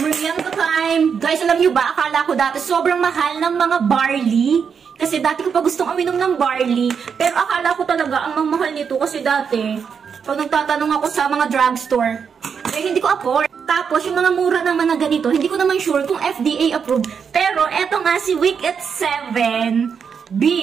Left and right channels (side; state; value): left; quieter; 6.6 dB